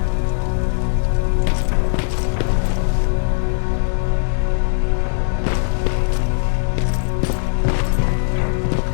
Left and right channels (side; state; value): right; silent; 67 dB below the other